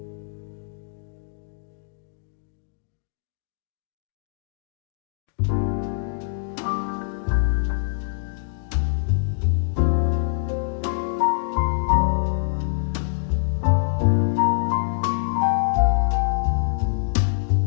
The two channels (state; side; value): silent; right; digital silence